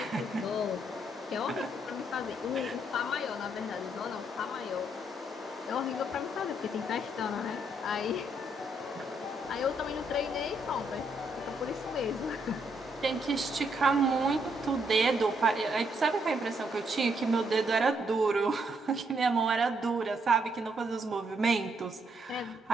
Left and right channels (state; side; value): normal; both; correlation 0.74